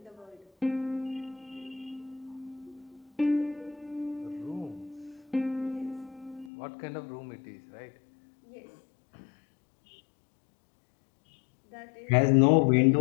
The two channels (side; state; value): right; drops out; at 6.5 s